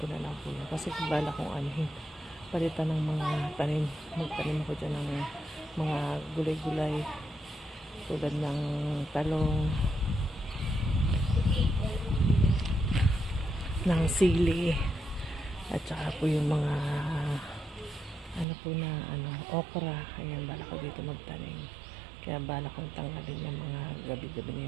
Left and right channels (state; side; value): drops out; left; at 18.4 s